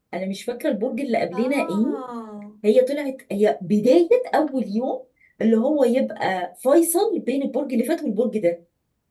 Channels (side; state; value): both; identical; correlation 1.00